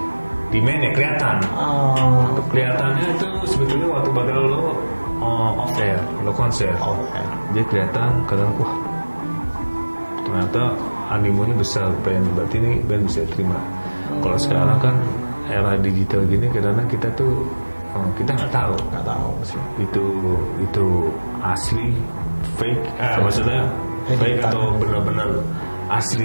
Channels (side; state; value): both; inverted; correlation -1.00